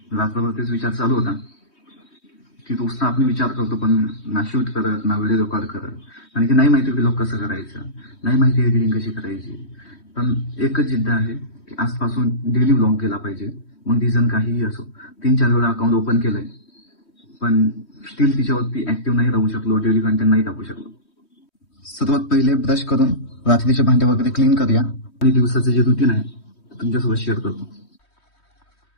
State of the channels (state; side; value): late; right; 3.1 ms